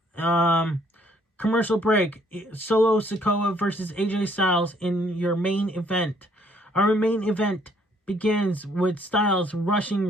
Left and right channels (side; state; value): both; normal; correlation 0.64